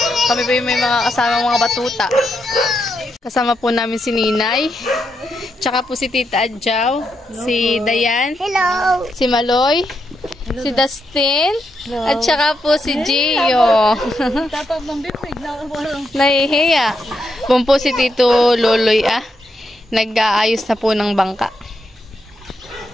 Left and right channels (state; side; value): normal; both; correlation 0.82